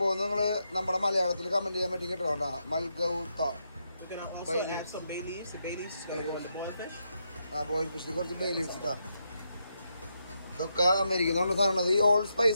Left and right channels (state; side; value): inverted; both; correlation -0.82